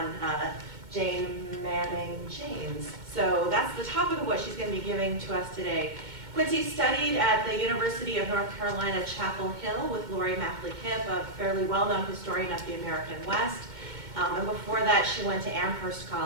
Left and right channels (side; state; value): left; late; 2.2 ms